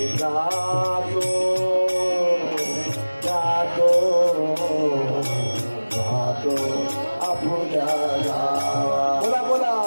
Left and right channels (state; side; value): inverted; both; correlation -1.00